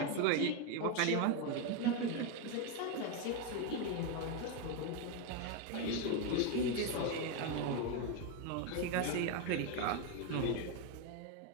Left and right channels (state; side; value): different; both; correlation 0.02